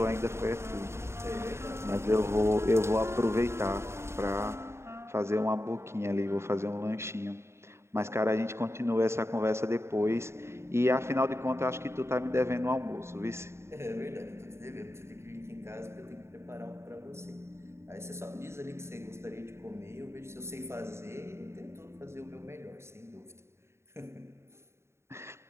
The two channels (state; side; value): late; left; 0.13 ms